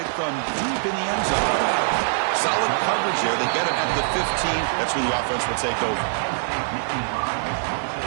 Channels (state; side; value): silent; left; 63 dB below the other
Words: from deep in the end zone. Solid coverage there. They get it at the 15. That's where the offense will take over.